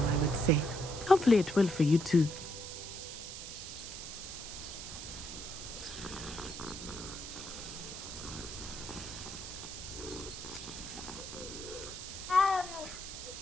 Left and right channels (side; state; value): right; noise; hiss, 9 dB below the sound